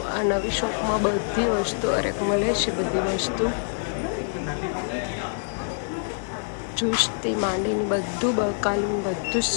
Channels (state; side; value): silent; right; 61 dB below the other